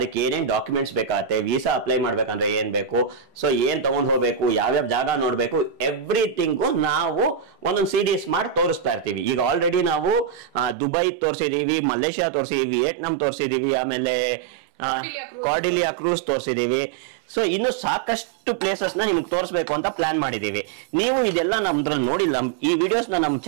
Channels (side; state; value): left; drops out; at 10.8 s